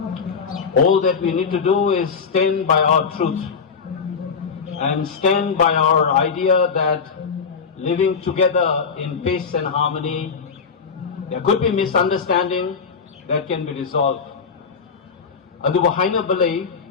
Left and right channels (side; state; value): right; quieter; 5.7 dB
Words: All that we need to do is stand by our truth and stand by our idea that living together in peace and harmony, there could be misunderstanding that can be resolved. Aduba haina balay